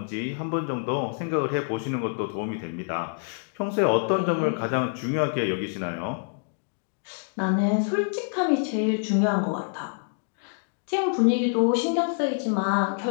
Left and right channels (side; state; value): right; silent; digital silence